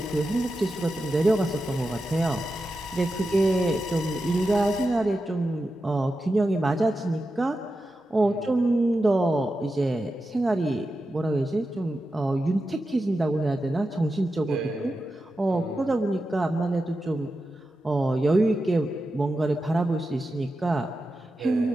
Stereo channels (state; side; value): normal; both; correlation 0.91